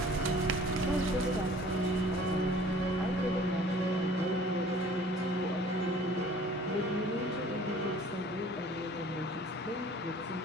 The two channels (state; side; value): normal; both; correlation 0.50